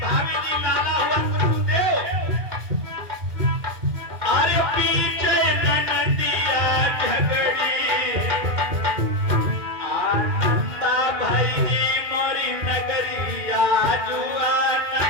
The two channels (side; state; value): left; late; 2.4 ms